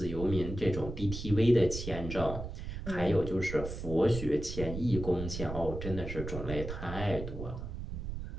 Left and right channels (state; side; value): noise; right; rumble, 7 dB below the sound